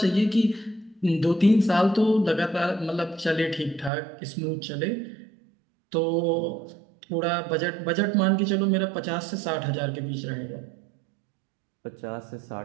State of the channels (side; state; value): left; drops out; at 3.9 s